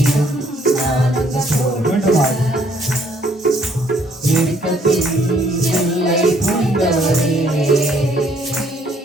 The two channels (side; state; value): both; normal; correlation 0.64